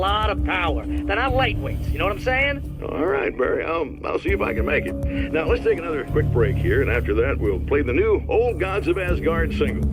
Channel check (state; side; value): identical; both; correlation 1.00